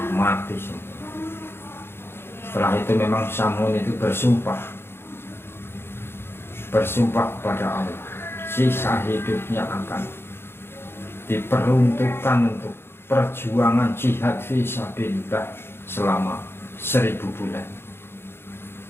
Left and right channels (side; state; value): right; late; 0.11 ms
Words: mati semua. Setelah itu memang Samun itu bersumpah kepada Allah, sisa hidupnya akan diperuntukkan untuk perjuangan jihad fisabilillah selama 1000 bulan.